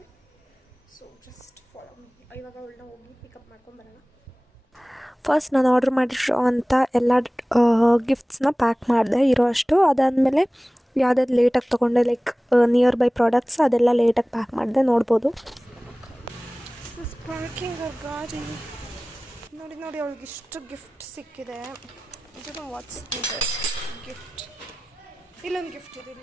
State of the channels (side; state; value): both; normal; correlation 0.98